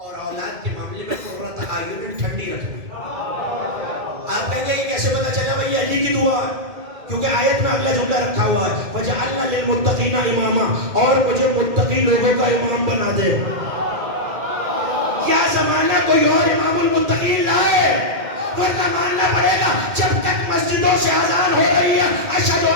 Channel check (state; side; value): late; left; 2.1 ms